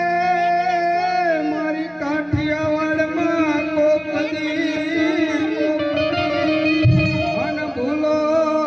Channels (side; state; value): both; identical; correlation 1.00